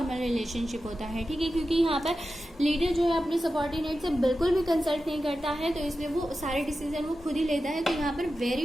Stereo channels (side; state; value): both; normal; correlation 0.92